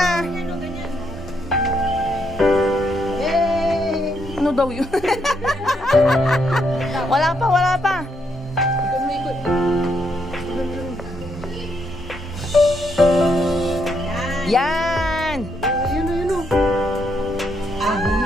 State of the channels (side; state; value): both; normal; correlation 0.76